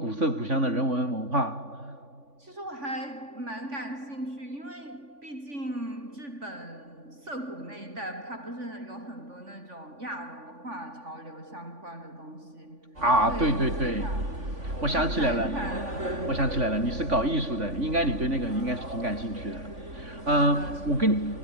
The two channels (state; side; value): late; left; 3.5 ms